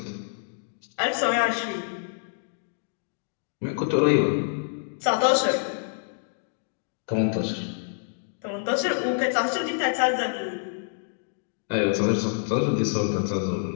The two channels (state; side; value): silent; right; digital silence